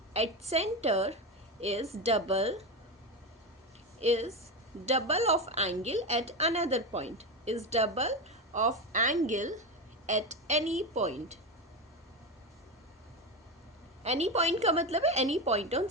at centre is double of angle at another point, is double of angle at any point. Any point का मतलब है any point on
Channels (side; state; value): both; normal; correlation 0.17